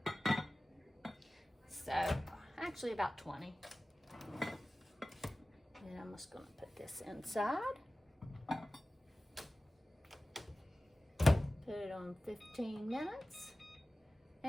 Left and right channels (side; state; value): both; normal; correlation 0.96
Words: So, actually about 20. And I'm just going to put this inside. Put it on 15 minutes.